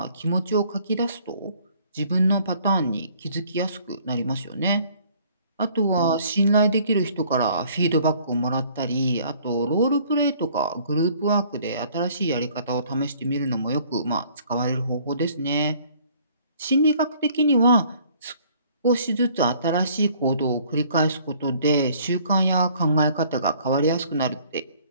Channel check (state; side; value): inverted; both; correlation -0.57